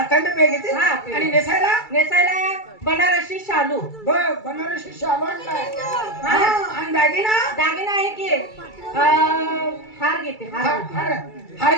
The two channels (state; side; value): late; right; 2.3 ms